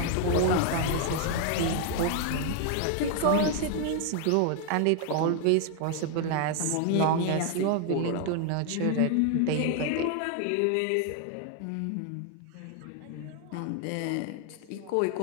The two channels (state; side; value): different; both; correlation 0.01